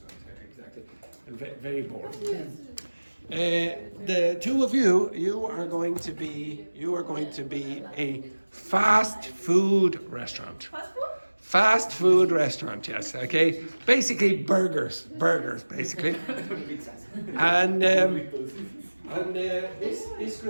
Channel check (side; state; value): both; inverted; correlation -1.00